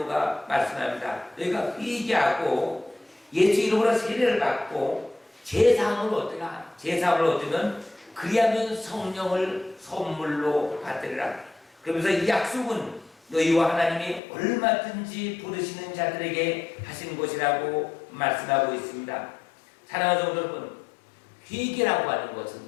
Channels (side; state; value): right; drops out; at 14.2 s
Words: 말씀합니다. 너희가 회개하고 예수 이름으로 세례를 받고 제사함을 얻으라. 제사함을 얻으면 그리하면 성령을 선물로 받으리라. 그러면서 이 약속은 너희와 하나님이 얼마든지 부르시는 자들에게 하신 것이라고 말씀하고 있습니다. 사랑하는 성도 여러분, 회개라고 하는 것은